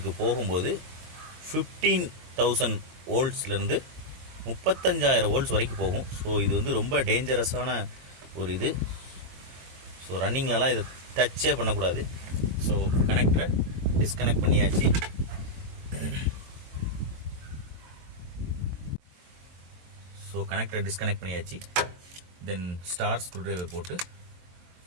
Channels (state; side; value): late; left; 22 ms